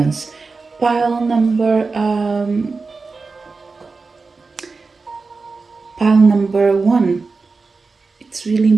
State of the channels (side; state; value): left; quieter; 4.2 dB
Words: Pile number pile number one, it's really